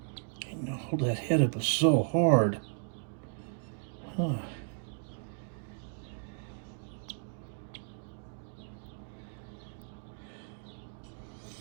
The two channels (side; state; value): left; silent; digital silence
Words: know, hold that head up is so hard. Huh.